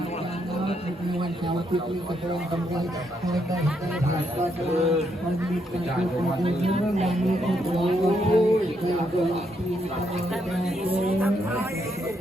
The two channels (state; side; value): normal; both; correlation 0.77